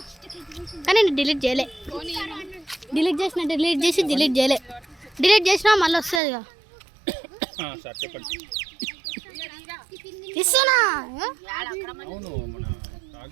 కానీ నేను డిలీట్ చేయలే. డిలీట్ చేయలే. డిలీట్ చేసినా మళ్ళీ వస్తుంది ఇక ఇస్తున్నా. అవును మన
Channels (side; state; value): left; drops out; at 6.2 s